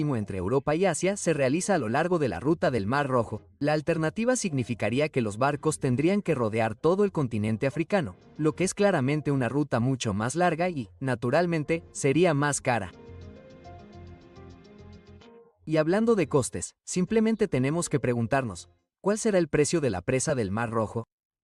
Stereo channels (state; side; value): identical; both; correlation 1.00